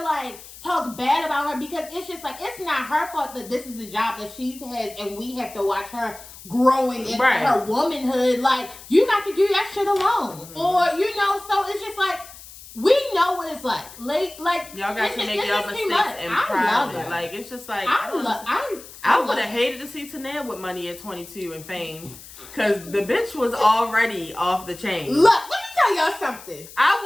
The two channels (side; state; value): left; noise; hiss, 17 dB below the sound